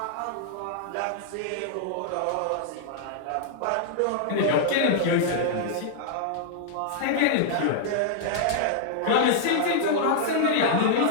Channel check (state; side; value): different; both; correlation -0.01